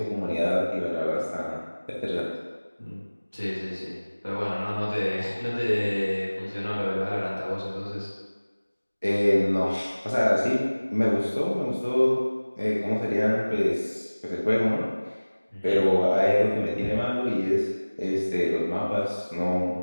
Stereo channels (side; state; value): both; inverted; correlation -1.00